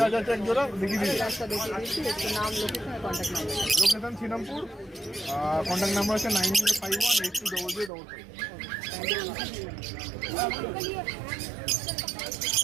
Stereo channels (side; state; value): left; drops out; at 7.9 s